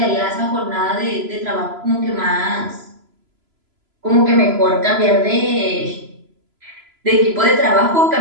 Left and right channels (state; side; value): late; left; 3.0 ms